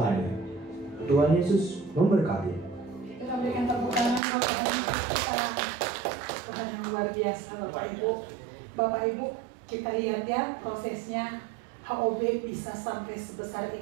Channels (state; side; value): drops out; left; at 4.2 s